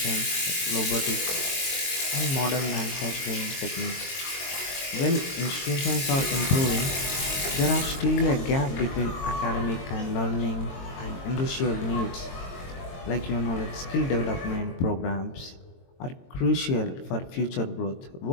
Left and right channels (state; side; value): late; right; 22 ms